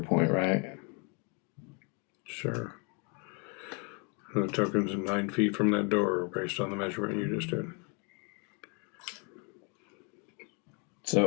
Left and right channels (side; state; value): right; quieter; 34.8 dB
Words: point, right? Sure. The token's 9 feet from that door based on the measurement you just did.